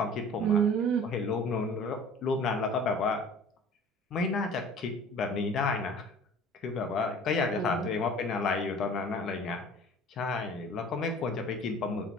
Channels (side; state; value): both; normal; correlation 0.45